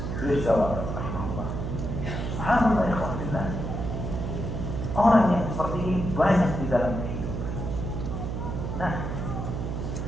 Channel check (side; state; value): right; noise; hum, 3 dB below the sound